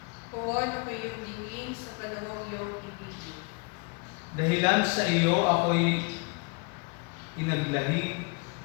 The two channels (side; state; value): right; quieter; 31.0 dB